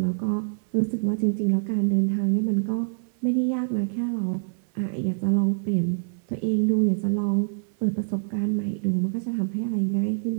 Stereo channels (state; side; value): silent; left; 61 dB below the other